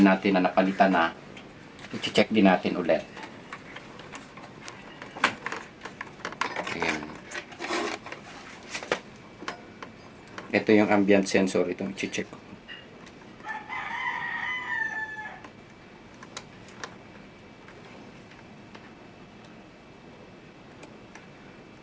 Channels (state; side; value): identical; both; correlation 1.00